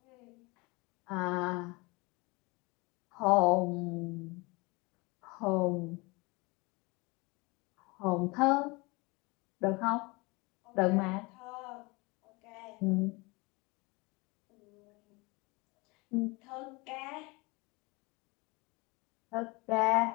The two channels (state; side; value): quieter; right; 25.9 dB